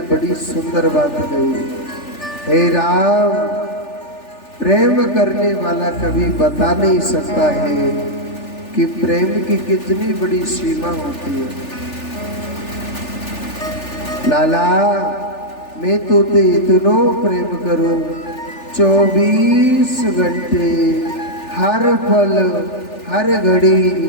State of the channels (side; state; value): right; late; 3.4 ms